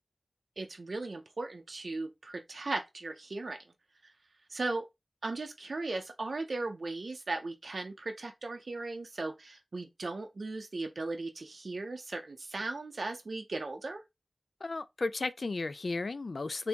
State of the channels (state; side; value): normal; both; correlation 0.95